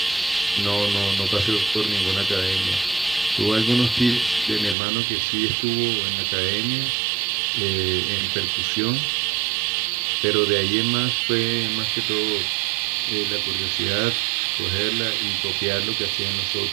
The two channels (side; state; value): left; drops out; at 4.8 s